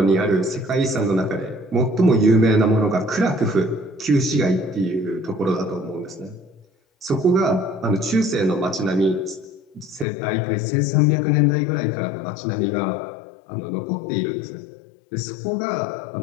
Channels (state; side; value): drops out; right; at 10.1 s